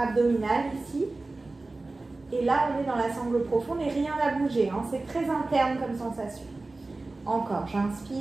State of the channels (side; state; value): left; quieter; 3.2 dB